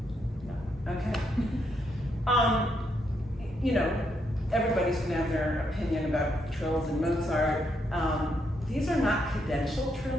no. Okay. You know, everybody's gonna have their opinion about trills and Mozart. These are not cadential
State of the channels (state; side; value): normal; both; correlation 0.78